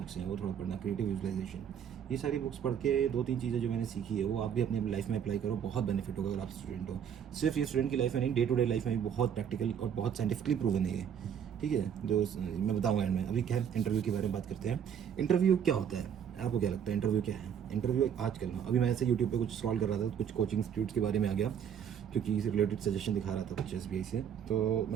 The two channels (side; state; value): left; quieter; 8.4 dB